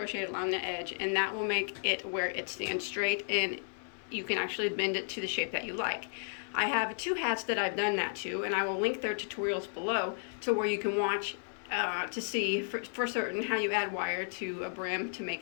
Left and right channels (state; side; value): silent; right; 56 dB below the other